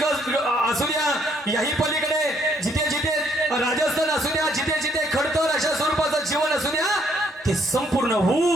असू द्या, याही पलीकडे जिथे जिथे राजस्थान असू द्या, जिथे जिथे खडतर अशा स्वरूपाचं जीवन असू द्या, ते संपूर्ण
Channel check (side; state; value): both; normal; correlation 0.68